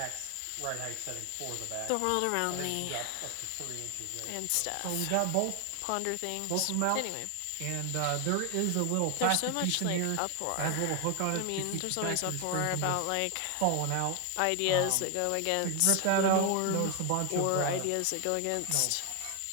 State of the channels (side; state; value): both; different; correlation 0.00